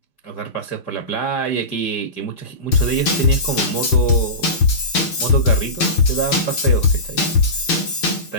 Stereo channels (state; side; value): late; right; 6.6 ms